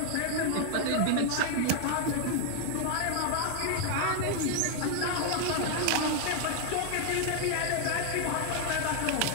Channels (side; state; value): both; different; correlation 0.00